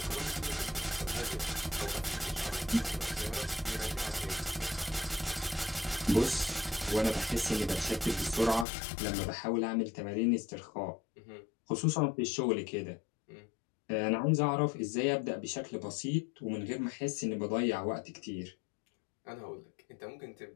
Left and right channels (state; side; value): drops out; right; at 8.7 s